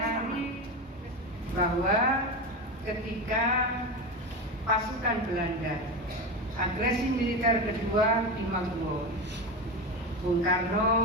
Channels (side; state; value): both; normal; correlation 0.20